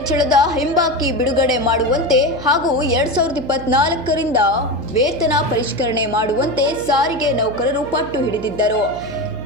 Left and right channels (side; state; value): right; noise; hum, 13 dB below the sound